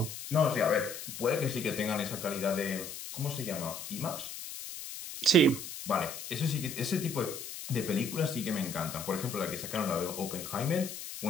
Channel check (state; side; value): noise; left; hiss, 9 dB below the sound